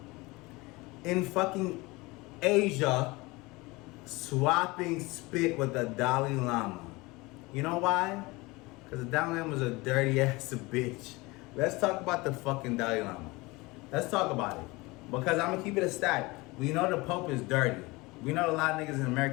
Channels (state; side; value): quieter; right; 23.2 dB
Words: In fucking Asia, swapping spit with the Dalai Lama. You know why? Because the Dalai Lama is a dirty ass bitch. Let's talk about the fucking Dalai Lama. Let's talk about it. Because I'm going to keep it a stack. We know the Pope is dirty. We know a lot of niggas in